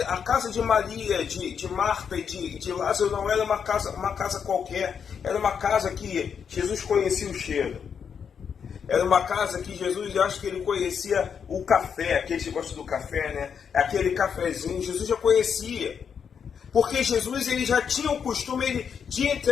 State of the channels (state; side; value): quieter; right; 7.1 dB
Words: a casa de Maria, de Marta e de Lázaro não era uma casa qualquer, era uma casa que Jesus conhecia o cheiro. Era uma casa que Jesus, eu acho que ele conhecia o café, aqueles que gostam do café, né? Aquele cafezinho, Jesus já conhecia. Porque Jesus, ele já tinha o costume de